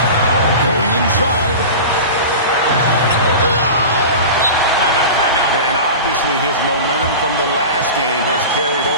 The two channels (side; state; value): both; inverted; correlation -0.31